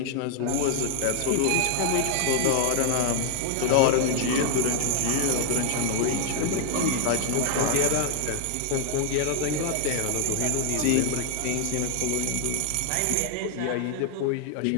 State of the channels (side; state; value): both; different; correlation 0.00